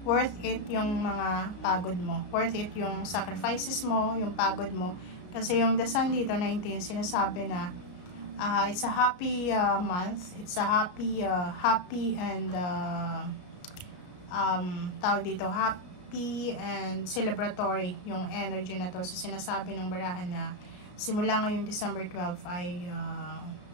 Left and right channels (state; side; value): late; right; 33 ms